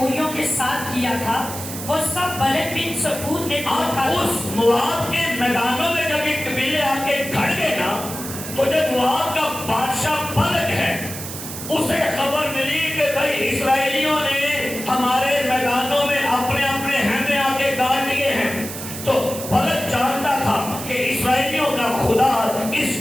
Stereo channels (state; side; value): noise; right; hiss, 9 dB below the sound